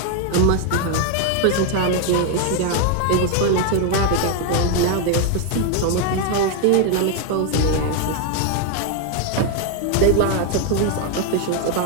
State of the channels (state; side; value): different; both; correlation 0.01